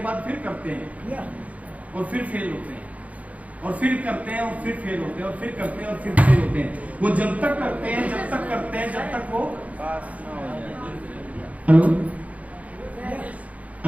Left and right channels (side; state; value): left; late; 0.069 ms